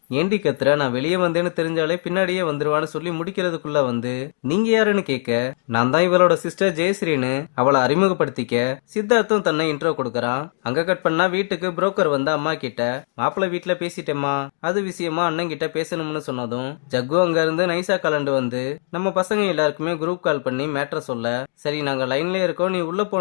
ஏண்டி கத்துற, நான் வெளியே வந்தேன்னு தெரிஞ்சாலே பின்னாடியே வந்துருவான்னு சொல்லி முடிக்கிறதுக்குள்ள வந்து நீங்க யாருன்னு கேட்க, நான் தான் இவளோட சிஸ்டர் ஜெயஸ்ரீன்னு அவளை அறிமுகப்படுத்திக்க சித்தார்த்தும் தன்னை இன்ட்ரோ கொடுக்கறான். அங்க கட் பண்ணா வீட்டுக்கு புரோக்கர் வந்து அம்மா கிட்ட மாப்பிள்ளை வீட்டுல பேசிட்டேம்மா, அது விஷயமா அண்ணன் கிட்ட பேசணும்னு சொன்னதும் ஜக்கு அங்க இருந்து நைசா கலண்டு வந்து நம்ம பசங்க எல்லாருக்குமே குரூப் கால் பண்ணி மேட்ரை சொல்ல, சரி நாங்க லைன்லயே இருக்கோம் நீ உள்ள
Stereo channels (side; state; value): right; silent; digital silence